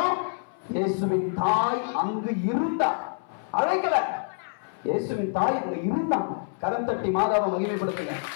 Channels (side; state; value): right; silent; 60 dB below the other